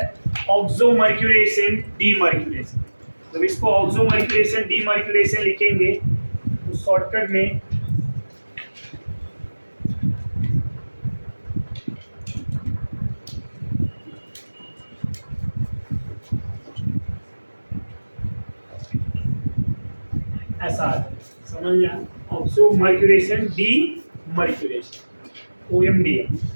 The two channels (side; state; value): both; inverted; correlation -1.00